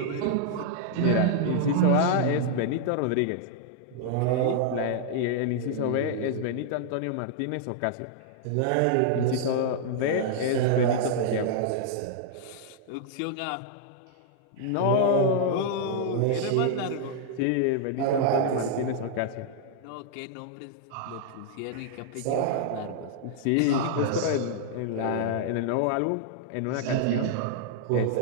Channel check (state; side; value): different; both; correlation -0.01